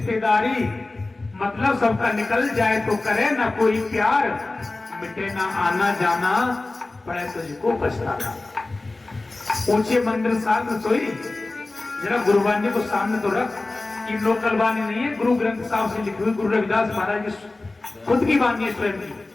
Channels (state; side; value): quieter; right; 3.1 dB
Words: मतलब सबका निकल जाए तो करे ना कोई प्यार, मिटे ना आना जाना पड़े तुझको पछताना। ऊंचे मंदिर साल रसोई, जरा गुरुवाणी को सामने तो रख, ये लोकल वाणी नहीं है, गुरु ग्रंथ साहब से लिखी हुई, गुरु रविदास महाराज की खुद की वाणी है स्वयं की।